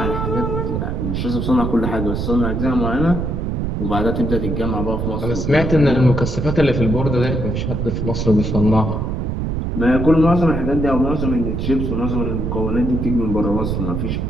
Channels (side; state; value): right; noise; rumble, 1 dB below the sound